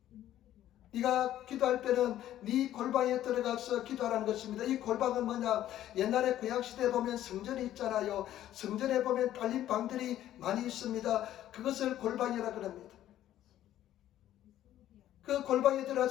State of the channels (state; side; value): quieter; right; 12.6 dB